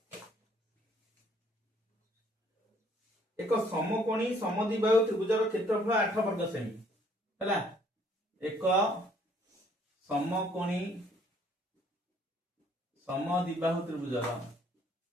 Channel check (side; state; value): both; normal; correlation 0.62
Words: एक समकोणी समद्विबाहु त्रिभुजर क्षेत्रफल 8 वर्ग सेमी हैला एक समकोणी समद्विबाहु त्रिभुजर